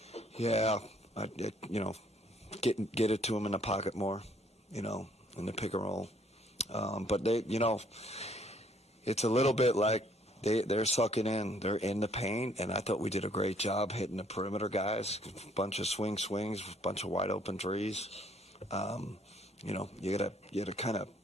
involved? Get it to them in the pocket more. In the pick and roll. But they, it's a little bit like they're sucking in. They're in the paint, and I thought we did a great job hitting the perimeter guys. A bunch of swings, a bunch of wide open threes. You gotta kind of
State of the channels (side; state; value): both; normal; correlation 0.64